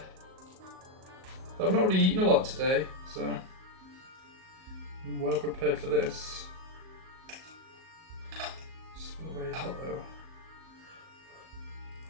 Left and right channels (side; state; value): left; late; 38 ms